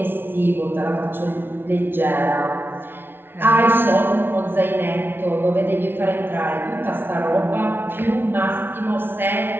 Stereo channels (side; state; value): left; late; 0.11 ms